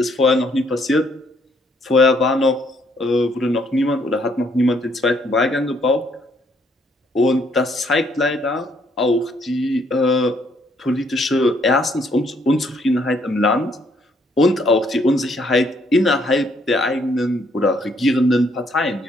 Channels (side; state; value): both; normal; correlation 0.69